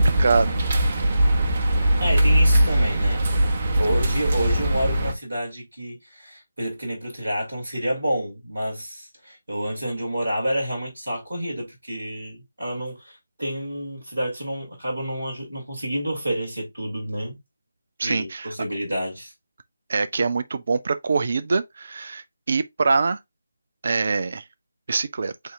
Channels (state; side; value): inverted; both; correlation -0.90